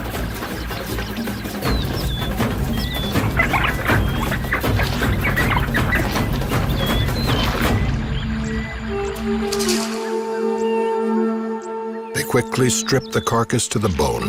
Quickly strip the carcass to the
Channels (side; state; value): both; identical; correlation 1.00